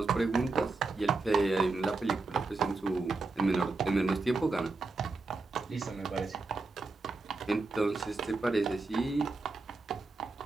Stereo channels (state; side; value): quieter; left; 3.7 dB